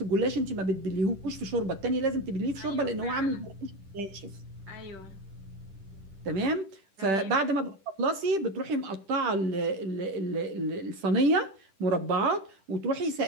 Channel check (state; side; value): late; left; 10 ms